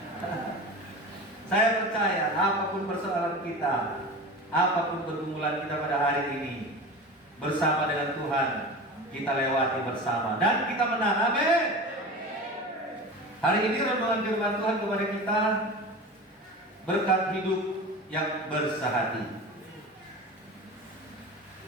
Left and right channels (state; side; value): normal; both; correlation 0.31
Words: Saya percaya apapun persoalan kita, apapun pergumulan kita pada hari ini, bersama dengan Tuhan kita lewati bersama dan kita menang. Amin. Hari ini renungan firman Tuhan kepada kita berkat hidup yang bersehati.